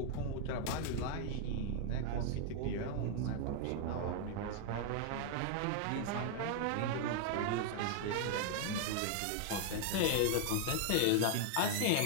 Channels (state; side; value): different; both; correlation 0.00